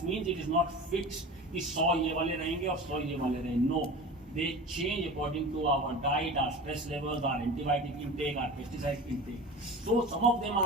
means it is not fixed. कि 100 ये वाले रहेंगे और 100 ये वाले रहेंगे. No, they change according to our diet, our stress levels, our antibiotic intake, our pesticide intake. So some of them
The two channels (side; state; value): both; normal; correlation 0.34